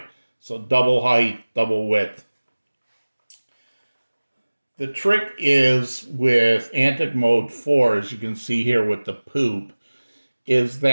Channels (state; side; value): inverted; both; correlation -1.00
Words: So double height, double width. The trick is with Antic Mode 4, as you can see here with the poop, is